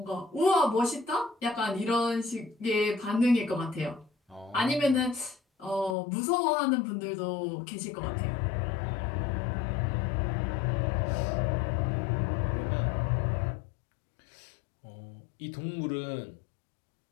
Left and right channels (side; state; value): right; drops out; at 6.0 s